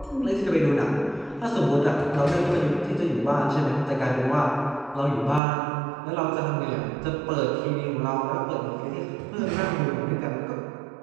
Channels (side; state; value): left; drops out; at 5.4 s